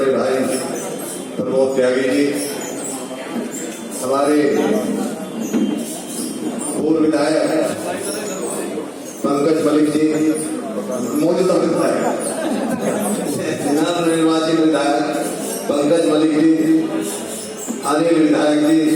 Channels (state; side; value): identical; both; correlation 1.00